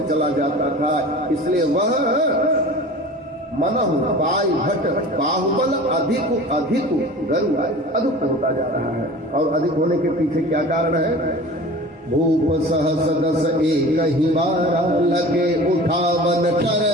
चला जाता था। इसलिए वह मनहु पाई भट बाहुबल अधिक अधिक गरुआय, अधिक होता जा रहा है। और अधिक होने के पीछे क्या कारण है? भूप सहस 10 एकहि 12, लगे उठावन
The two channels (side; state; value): both; normal; correlation 0.39